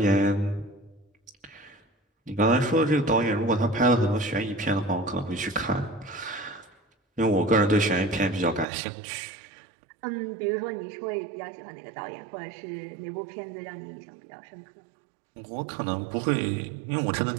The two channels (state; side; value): drops out; left; at 8.7 s